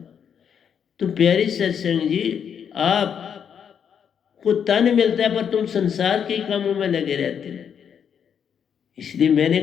तो प्यारी सत्संग जी, आपको तन मिलता है पर तुम संसार के कामों में लगे रहते हो। इसलिए मैंने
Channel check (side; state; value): right; quieter; 7.8 dB